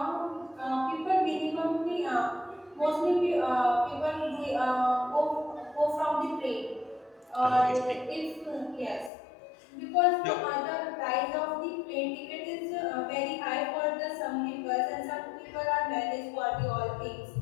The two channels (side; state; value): right; drops out; at 9.1 s